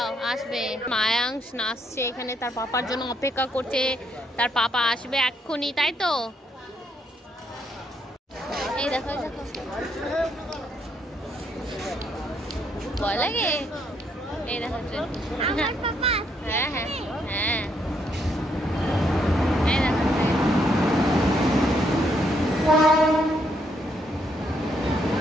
আসবে। মায়াংশ নাচছে এখানে, তার পাপার জন্য অপেক্ষা করছে। তার পাপা আসবে এক্ষুনি, তাই তো? এই দেখো দেখো, ভয় লাগে। এই দেখো, হ্যাঁ হ্যাঁ হ্যাঁ, এই দেখো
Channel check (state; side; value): normal; both; correlation 0.74